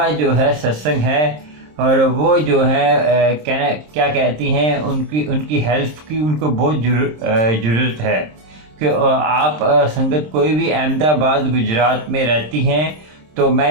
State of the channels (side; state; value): left; late; 26 ms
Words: जो है सत्संग है और वो जो है कहना क्या कहती हैं, उनकी उनकी हेल्प की उनको बहुत ज़रूरत है कि आप संगत कोई भी अहमदाबाद गुजरात में रहती हैं तो